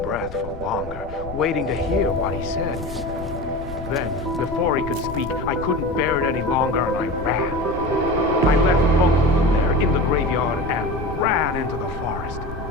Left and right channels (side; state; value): left; noise; rumble, 13 dB below the sound